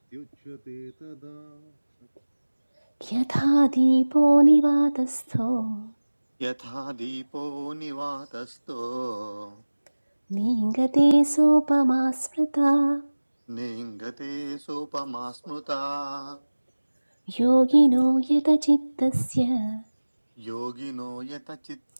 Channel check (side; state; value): both; inverted; correlation -1.00